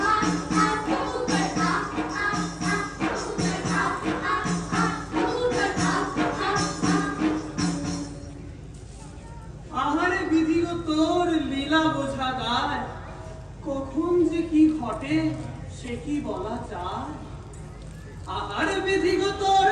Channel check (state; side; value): identical; both; correlation 1.00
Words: আ আ কবুতর আ আ আ কবুতর আ আ আ কবুতর আ আ আ। আহারে বিধিও তোর লীলা বোঝা দায়, কখন যে কি ঘটে সে কি বলা যায়। আহারে বিধিও তোর